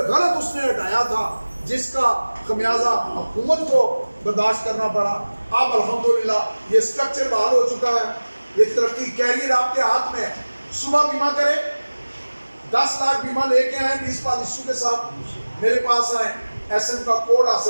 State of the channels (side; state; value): both; inverted; correlation -1.00